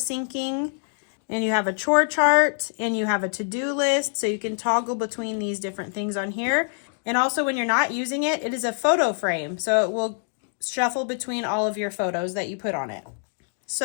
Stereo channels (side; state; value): right; silent; digital silence